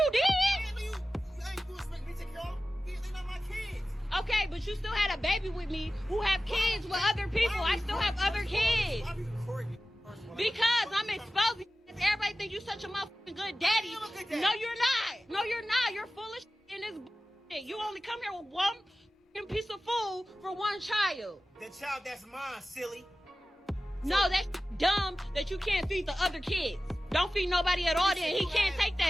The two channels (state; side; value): normal; both; correlation 0.96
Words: did. You ain't gonna expect me to take care of them. They're not my kids. Okay, but you still had a baby with me who have kids with other people. I still have other kids. Why are you recording me? Because I'm exposing. Everybody think you such a motherfucking good daddy. No, you're not. No, you're not. You're full of shit in this bullshit. You only come here with one piece of food for one child. The child that's mine, silly. No, that's dumb that you can't feed the other kids. Don't feed nobody at all then. He can't take